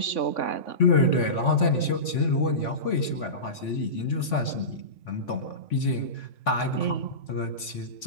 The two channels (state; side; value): late; right; 3.5 ms